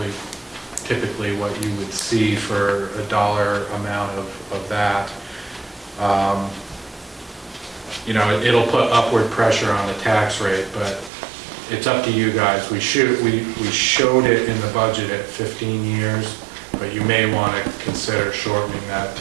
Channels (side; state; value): left; drops out; at 11.1 s